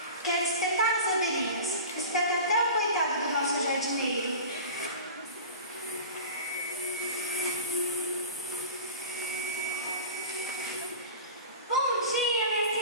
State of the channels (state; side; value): inverted; both; correlation -0.35